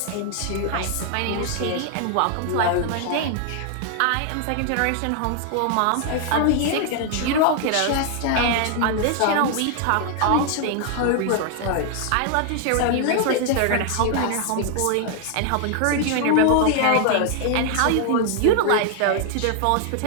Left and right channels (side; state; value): both; different; correlation 0.00